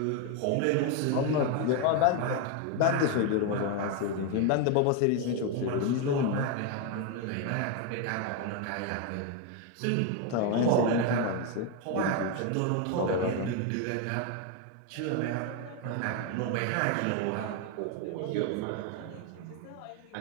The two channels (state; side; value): different; both; correlation 0.01